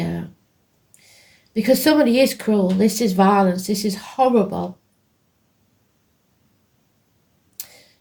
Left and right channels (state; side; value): identical; both; correlation 1.00